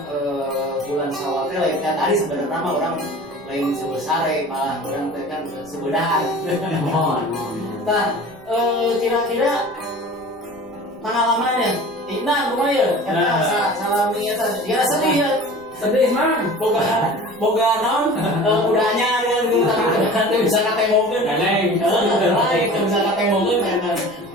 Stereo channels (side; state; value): right; noise; rumble, 28 dB below the sound